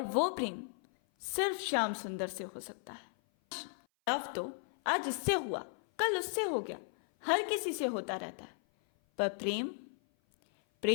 वो प्रेम सिर्फ श्याम सुंदर से हो सकता है। लव तो आज इससे हुआ, कल उससे हो गया, हर किसी से होता रहता है। पर प्रेम,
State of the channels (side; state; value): right; silent; 54 dB below the other